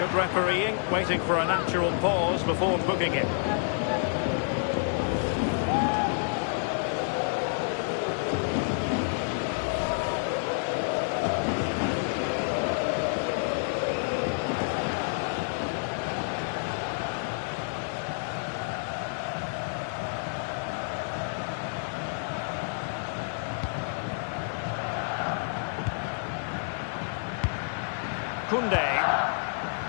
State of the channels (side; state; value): right; silent; digital silence